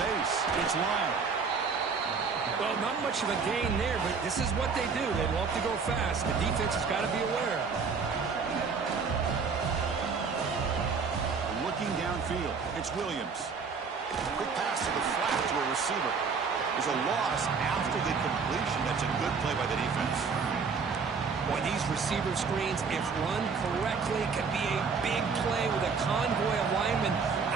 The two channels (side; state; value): left; quieter; 5.3 dB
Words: It's Lyle. Well, not much of a gain there, but this is what they do. They love to go fast. The defense has got to be aware. Looking downfield, it's Williams. Quick receiver. There's a loss after the completion. That's a good play by the defense. Boy, these receiver screens, if run correctly, can be a big play with a convoy of linemen